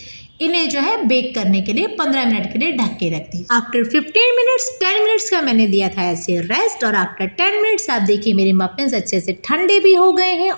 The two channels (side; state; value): both; inverted; correlation -1.00